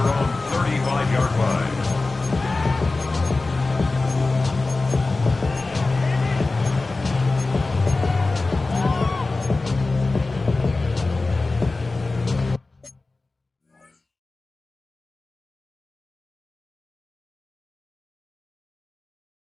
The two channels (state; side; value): quieter; right; 3.4 dB